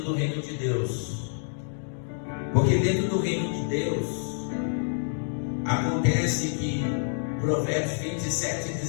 do reino de Deus. Porque dentro do reino de Deus acontece que Provérbios 27 e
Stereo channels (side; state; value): right; silent; digital silence